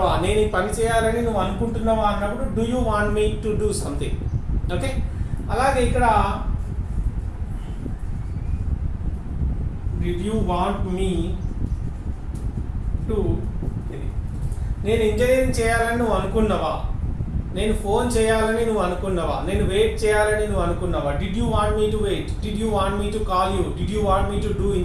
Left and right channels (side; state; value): both; identical; correlation 1.00